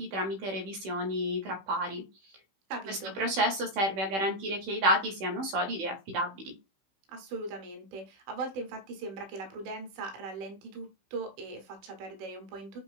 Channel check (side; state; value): left; late; 16 ms